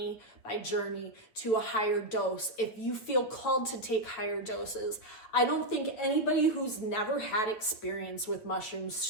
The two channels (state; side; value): late; right; 8.8 ms